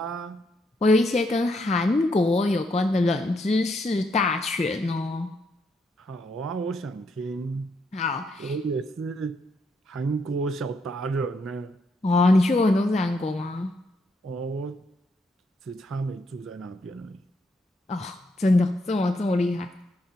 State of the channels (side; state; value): both; normal; correlation 0.76